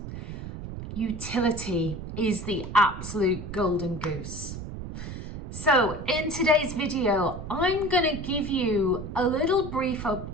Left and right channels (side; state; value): right; noise; rumble, 9 dB below the sound